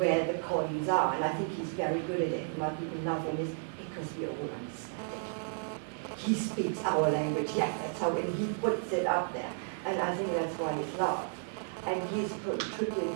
the coins are. And I think he's very good at it. Why people love him is because we all understand it. He speaks our language, yeah, that's how, and he puts it up there. And I think that's why he's loved. And he's contributing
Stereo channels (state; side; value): silent; left; digital silence